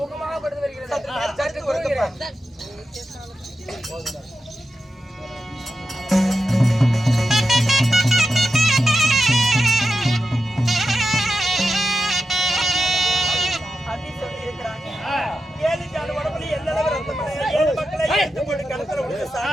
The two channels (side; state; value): both; normal; correlation 0.90